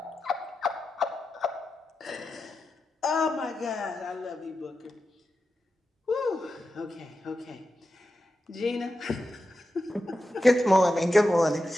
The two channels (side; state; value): both; normal; correlation 0.90